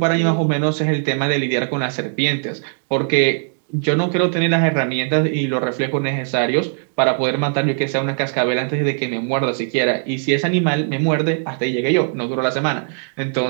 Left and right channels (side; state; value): left; silent; digital silence